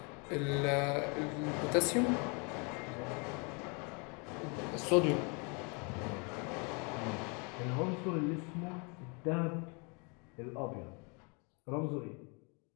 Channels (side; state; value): right; quieter; 33.1 dB